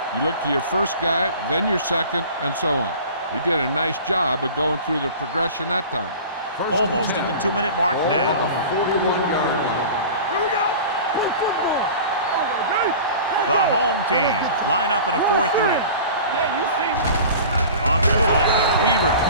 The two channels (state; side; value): inverted; both; correlation -0.39